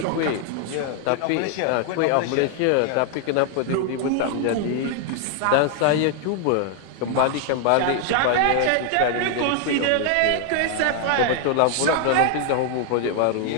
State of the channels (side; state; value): both; different; correlation 0.00